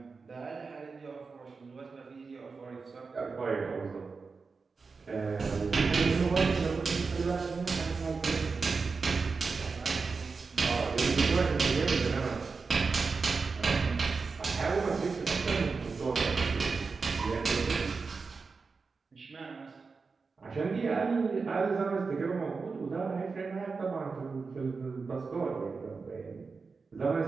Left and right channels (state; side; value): quieter; left; 4.6 dB